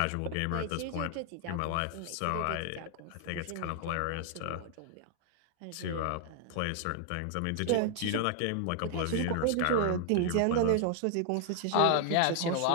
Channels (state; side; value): different; both; correlation 0.00